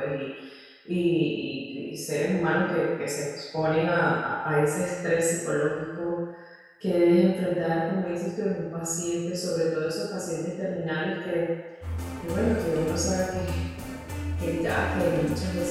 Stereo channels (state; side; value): identical; both; correlation 1.00